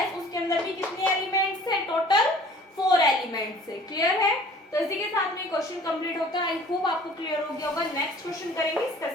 उसके अंदर भी कितने एलिमेंट्स है, टोटल 4 एलिमेंट्स है। क्लियर है। तो इसी के साथ में क्वेश्चन कंप्लीट होता है। आई होप आपको क्लियर हो गया होगा। नेक्स्ट क्वेश्चन करेंगे, इसका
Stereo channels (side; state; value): both; normal; correlation 0.50